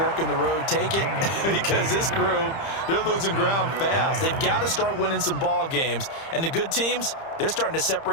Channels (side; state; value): right; late; 30 ms